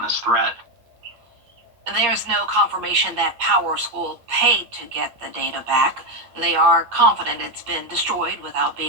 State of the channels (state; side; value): late; left; 8.6 ms